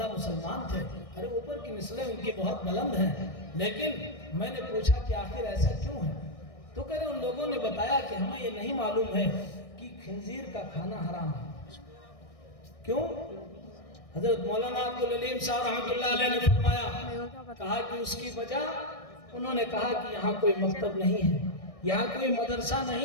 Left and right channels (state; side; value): late; right; 1.6 ms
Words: مسلمان تھے، ارے اوپر کی نسلیں ان کی بہت بلند ہیں، لیکن میں نے پوچھا کہ آخر ایسا کیوں ہے؟ تو کہہ رہے ان لوگوں نے بتایا کہ ہمیں یہ نہیں معلوم ہے کہ خنزیر کا کھانا حرام ہے۔ کیوں؟ حضرت مولانا عبدالعلیم صاحب رحمت اللہ علیہ نے فرمایا، کہا کہ اس کی وجہ، انہوں نے کہا کہ یہاں کوئی مکتب نہیں ہے، یہاں کوئی مدرسہ